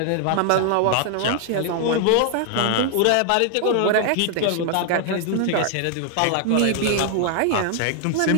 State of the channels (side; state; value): both; different; correlation 0.00